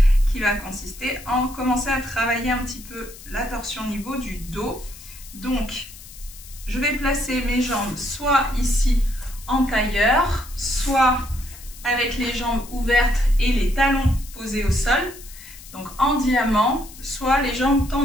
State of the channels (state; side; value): noise; left; hiss, 18 dB below the sound